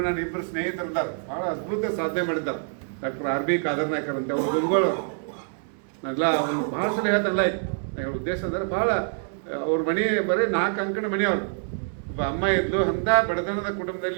ನನ್ನ ಇಬ್ಬರು ಸ್ನೇಹಿತರಿದ್ದಾರೆ, ಬಹಳ ಅದ್ಭುತ ಸಾಧನೆ ಮಾಡಿದ್ದಾರೆ. ಡಾಕ್ಟರ್ RB ಕಾದರ್ನಾಯ್ಕರ್ ಅಂತ ಅವ್ರು ಗುರುಗಳವರು. ನಾವೆಲ್ಲ ಒಂದು ಭಾಳ ಸಲ ಹೇಳ್ತಲ್ಲ, ಉದ್ದೇಶ ಅಂದ್ರೆ ಭಾಳ ಅವ್ರ ಮನೆ ಬರೀ 4 ಅಂಕಣ ಮನೆಯವರು. ಒಬ್ಬ ಅಮ್ಮ ಇದ್ಲು, ಅಂಥ ಬಡತನದ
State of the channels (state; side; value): silent; left; 61 dB below the other